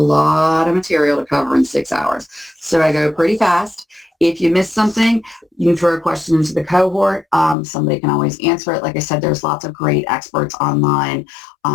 of material to cover in 6 hours. So I go pretty fast. If you miss something, you can throw a question into the cohort. Somebody can always answer it. Like I said, there's lots of great experts online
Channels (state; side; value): drops out; right; at 7.6 s